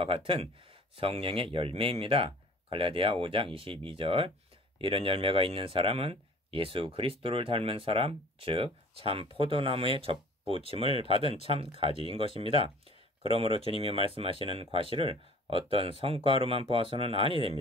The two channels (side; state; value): both; normal; correlation 0.48